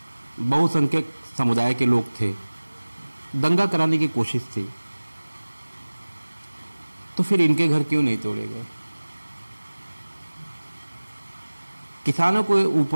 बहुसंख्यक समुदाय के लोग थे, दंगा कराने की कोशिश थी, तो फिर इनके घर क्यों नहीं तोड़े गए? किसानों के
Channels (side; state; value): both; inverted; correlation -1.00